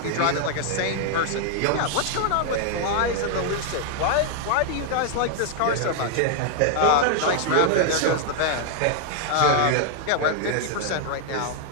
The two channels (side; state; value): both; different; correlation 0.00